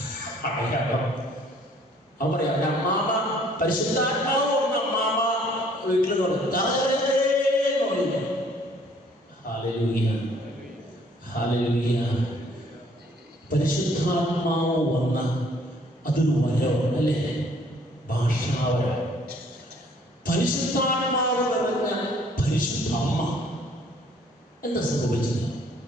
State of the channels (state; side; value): normal; both; correlation 0.60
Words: അടയാളം. അവൻ പറയാം, എൻ്റെ അമ്മാമ്മ പരിശുദ്ധാത്മാവ് വന്ന അമ്മാമ്മ വീട്ടിൽ പറഞ്ഞു. Hallelujah, hallelujah. പരിശുദ്ധാത്മാവ് വന്ന അതൊരു വരമാണ്, അല്ലേ? ഭാഷാവരം. പരിശുദ്ധാത്മാവ് നിറഞ്ഞ പരിശുദ്ധ അമ്മ. എന്താ സംഭവിച്ചത്?